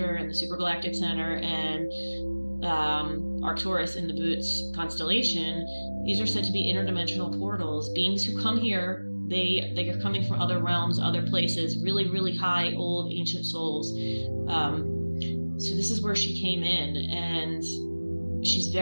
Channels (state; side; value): inverted; both; correlation -1.00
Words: and the supergalactic center, and Arcturus in the Boots constellation, these are said to be interdimensional portals. Beings who come here, they are coming from other realms, other places, really, really high, old, ancient souls. So this is where she came in, and she's